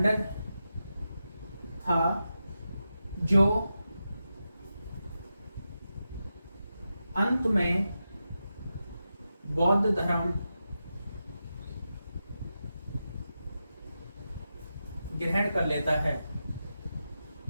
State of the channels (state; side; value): inverted; both; correlation -0.89